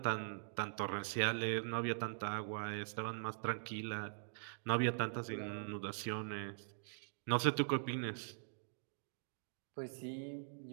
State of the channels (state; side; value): silent; left; digital silence